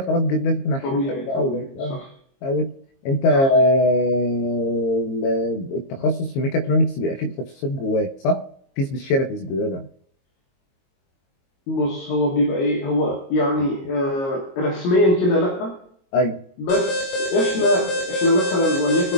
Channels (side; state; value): right; late; 22 ms